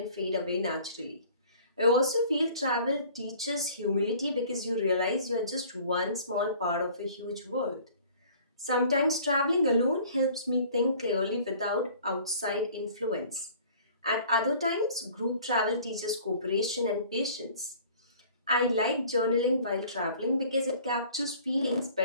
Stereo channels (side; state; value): both; inverted; correlation -0.50